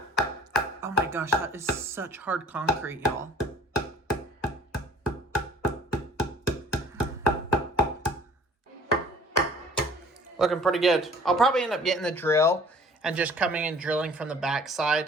my gosh, that is such hard concrete, y'all. Looking pretty good. I'll probably end up getting the drill and just coming and drilling from the back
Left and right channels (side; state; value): both; normal; correlation 0.51